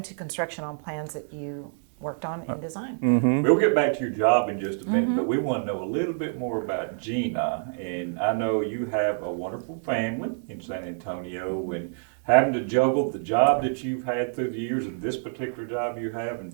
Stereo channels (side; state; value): left; silent; digital silence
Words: construction on plans that you worked on and designed. We'll get back to your job in just a minute, but we want to know a little bit more about Gina. And I know you have a wonderful family in San Antonio, and having to juggle the job that you've had through the years and this particular job you have and